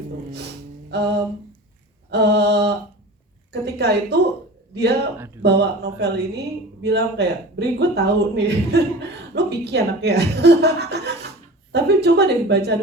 Ketika itu dia bawa novel ini bilang kayak, Bri gue tahu nih, lo picky anaknya. Tapi coba deh baca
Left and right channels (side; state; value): both; normal; correlation 0.36